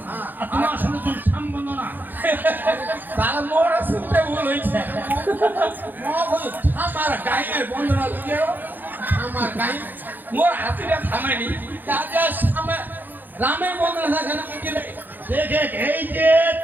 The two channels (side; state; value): left; late; 0.088 ms